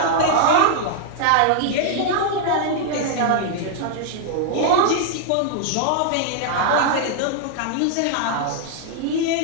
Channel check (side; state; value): both; different; correlation 0.00